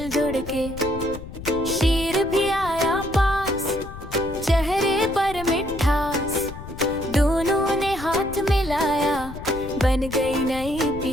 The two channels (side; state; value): left; noise; rumble, 12 dB below the sound